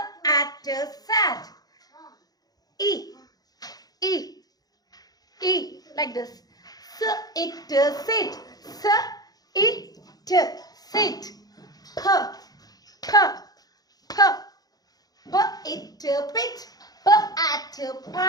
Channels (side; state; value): right; late; 0.19 ms